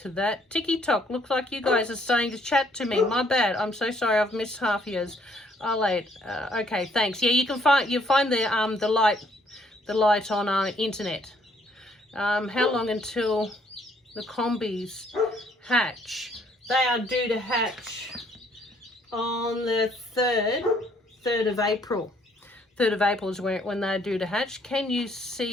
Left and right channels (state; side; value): normal; both; correlation 0.66